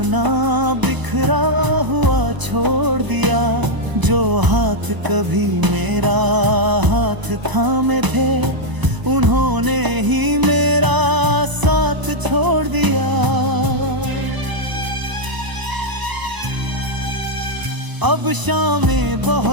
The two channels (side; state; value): left; late; 1.0 ms